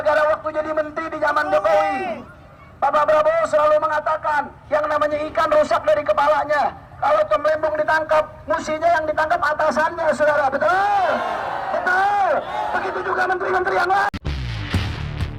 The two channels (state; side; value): identical; both; correlation 1.00